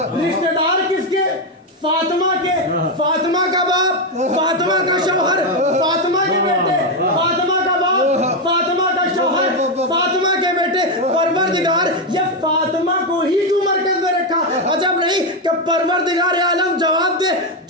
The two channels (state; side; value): normal; both; correlation 0.06